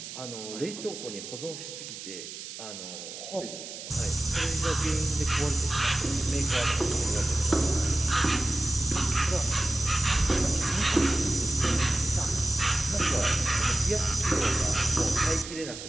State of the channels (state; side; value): noise; right; hiss, 11 dB below the sound